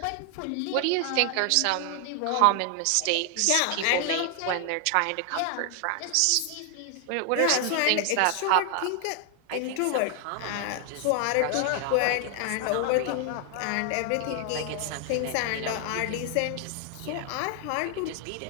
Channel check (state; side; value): different; both; correlation 0.00